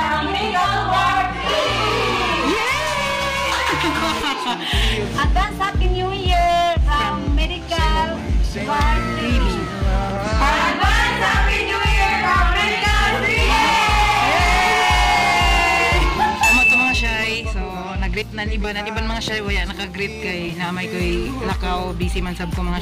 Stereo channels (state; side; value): identical; both; correlation 1.00